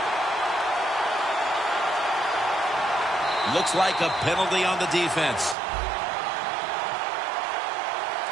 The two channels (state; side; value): drops out; left; at 5.6 s